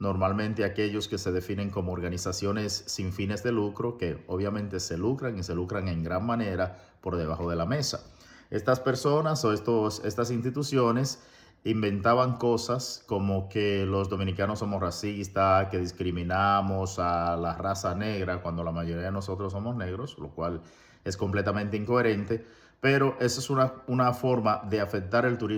aquellos que se definen como organizaciones sin fines de lucro, que obviamente se lucran y se lucran en gran manera por debajo de la mesa. Estas personas o estas instituciones inventaban cosas como que los dominicanos somos racistas, que discriminamos a la raza negra cuando la mayoría de nosotros somos negros, lo cual es completamente incoherente, pero esa es una forma de afectar el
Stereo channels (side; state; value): both; identical; correlation 1.00